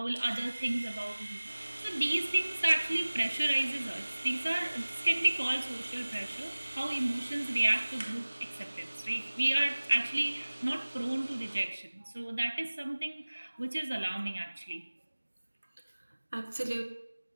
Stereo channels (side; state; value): both; inverted; correlation -1.00